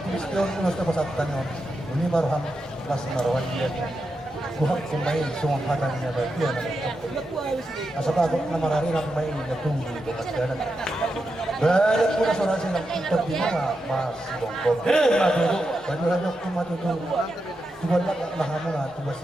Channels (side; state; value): both; normal; correlation 0.87